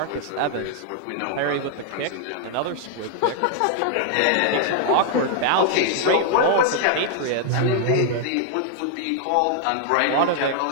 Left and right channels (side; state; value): both; different; correlation 0.00